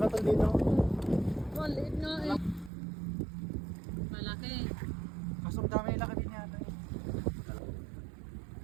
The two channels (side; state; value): left; drops out; at 2.7 s